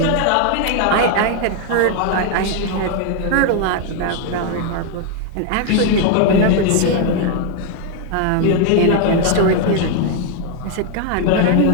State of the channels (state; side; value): different; both; correlation 0.00